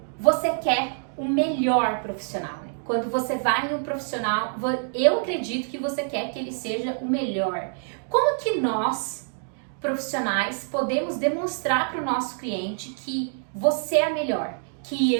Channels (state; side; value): silent; left; digital silence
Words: você quer o melhor profissional, né? Quando você vai em um profissional, eu acredito que você quer que ele seja o melhor. Como que nós, profissionais, podemos demonstrar para o nosso cliente que você é a melhor, que